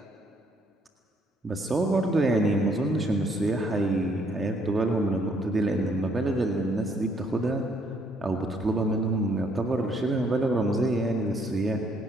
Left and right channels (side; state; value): both; normal; correlation 0.67